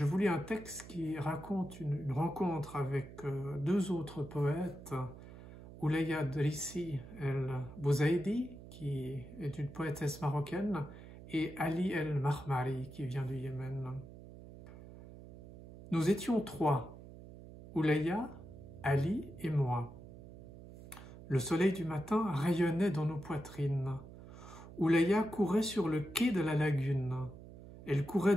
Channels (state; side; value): noise; right; hum, 16 dB below the sound